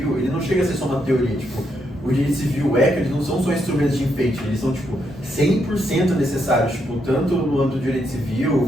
ele não chega a ser só uma teoria, tipo, o direito civil, o ECA, eles não são só instrumentos de enfeite, eles são, tipo, 100% necessários, tipo, tanto no âmbito do direito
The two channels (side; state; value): both; normal; correlation 0.78